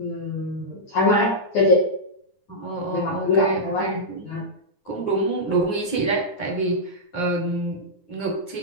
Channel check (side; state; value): right; late; 9.7 ms